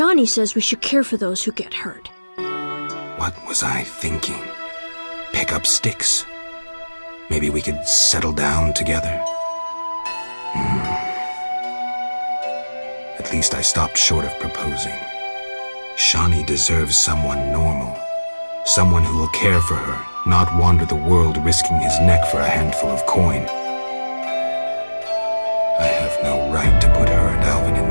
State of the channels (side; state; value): both; inverted; correlation -1.00